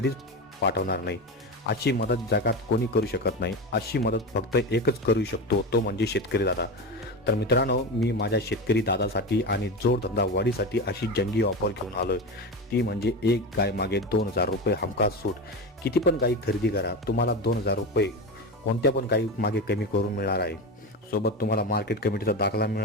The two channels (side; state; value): both; normal; correlation 0.22